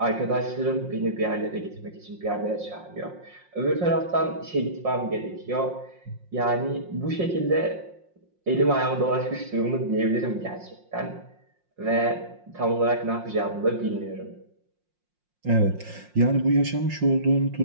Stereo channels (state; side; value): late; left; 5.6 ms